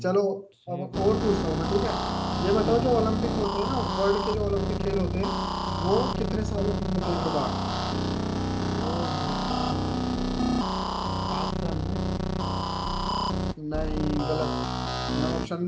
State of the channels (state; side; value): identical; both; correlation 1.00